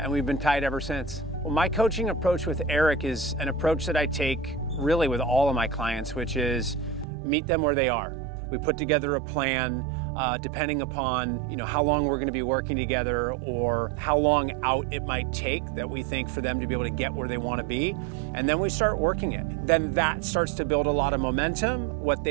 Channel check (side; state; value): left; drops out; at 7.1 s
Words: we've been tight ever since. Well, my coaching approach with Eric is an approach that I take really with all of my clients, which is meet them where they are. We put together a plan depending upon how long we're going to be working together or how long out it might take that we think for them to be able to get where they want to be. And then we start working it. Then that starts to build a lot of momentum. What